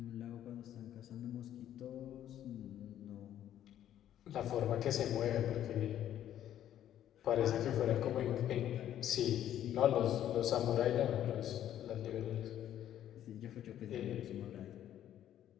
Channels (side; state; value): right; quieter; 11.3 dB